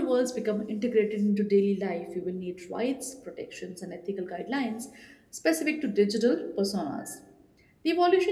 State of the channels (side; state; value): both; identical; correlation 1.00